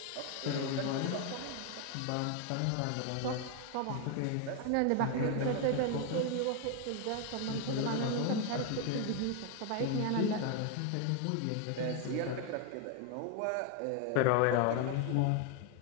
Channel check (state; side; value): different; both; correlation 0.01